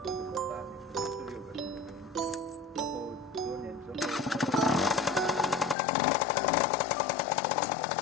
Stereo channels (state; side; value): drops out; right; at 5.8 s